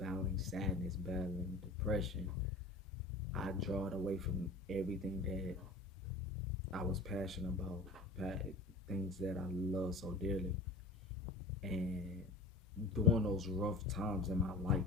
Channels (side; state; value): right; quieter; 3.1 dB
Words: sadness, battling depression, I draw it away from everything that I was passionate about, things that I love so dearly, and during those rough times in my life,